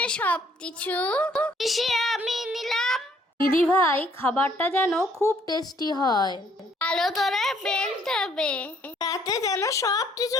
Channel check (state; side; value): normal; both; correlation 0.64